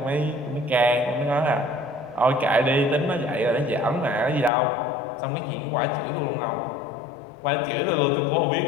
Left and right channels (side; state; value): right; drops out; at 4.5 s